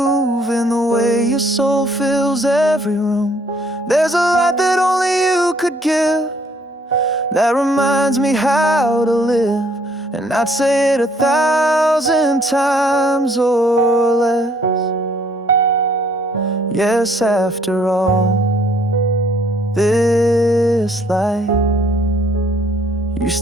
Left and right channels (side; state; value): both; normal; correlation 0.63